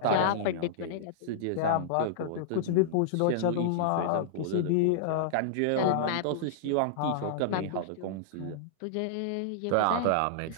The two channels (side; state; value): both; different; correlation -0.02